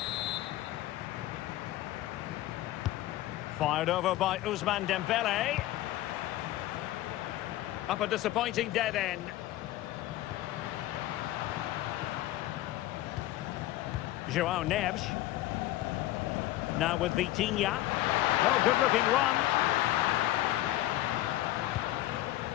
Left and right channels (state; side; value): quieter; right; 15.4 dB